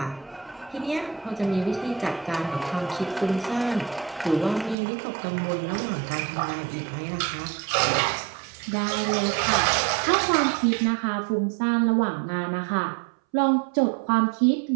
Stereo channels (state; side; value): drops out; left; at 4.8 s